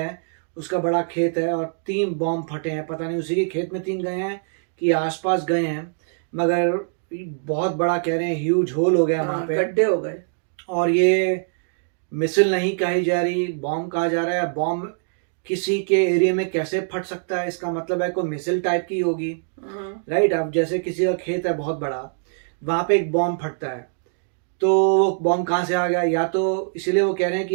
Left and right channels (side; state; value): left; silent; digital silence